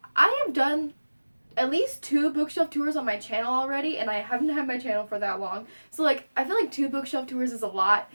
I have done at least 2 bookshelf tours on my channel already, and I haven't had my channel for that long. So I feel like 2 bookshelf tours is a lot.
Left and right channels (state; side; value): inverted; both; correlation -1.00